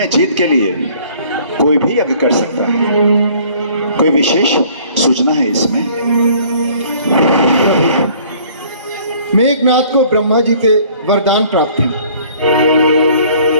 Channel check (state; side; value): inverted; both; correlation -0.55